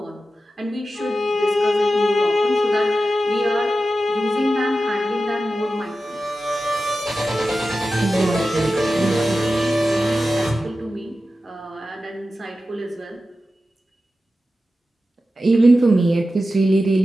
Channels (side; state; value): both; normal; correlation 0.93